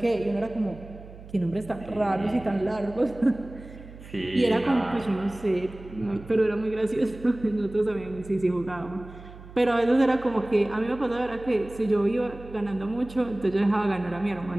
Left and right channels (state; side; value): noise; right; hum, 17 dB below the sound